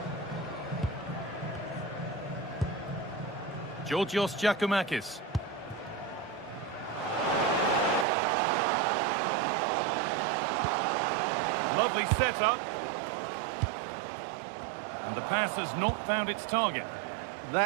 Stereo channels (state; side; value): drops out; left; at 8.1 s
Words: Georgios Giacomakis. Lovely setup. And the pass has not found its target.